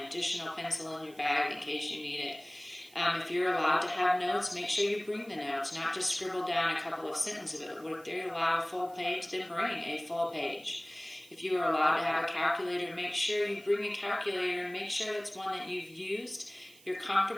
additional pencil in your bag in case you need it. If you're allowed to have notes, make sure you bring the notes, not just scribble down a couple of sentences of it. If they're allowed a full page, then bring a full page. If you are allowed to have a calculator, make sure you bring a calculator and make sure it's one that you've used, you're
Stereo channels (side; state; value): right; noise; hiss, 24 dB below the sound